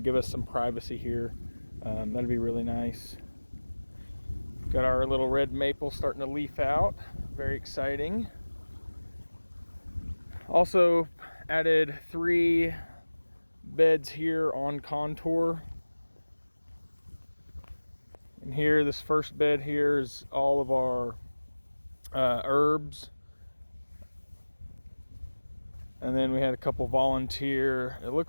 give us some privacy here. That'd be really nice. Got our little red maple starting to leaf out, very exciting. Also added 3 beds here on contour. And here, this first bed here is all of our herbs. And then we had a couple volunteer, it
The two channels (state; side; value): inverted; both; correlation -1.00